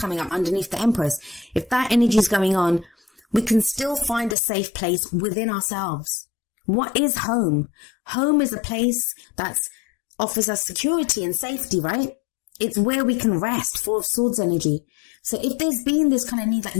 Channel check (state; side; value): drops out; right; at 4.4 s